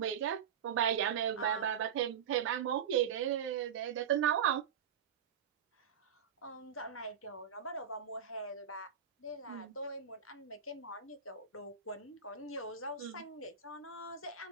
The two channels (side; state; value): left; quieter; 8.1 dB